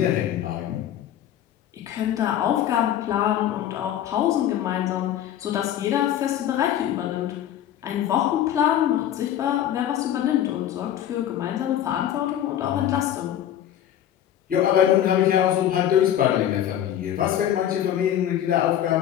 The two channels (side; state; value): right; quieter; 11.0 dB